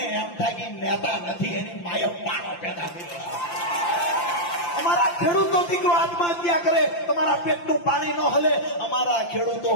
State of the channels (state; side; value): late; right; 5.8 ms